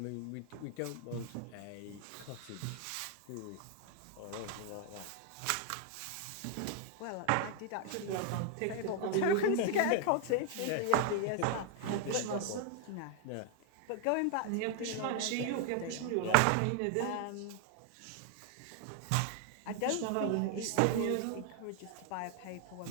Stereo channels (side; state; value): both; different; correlation 0.00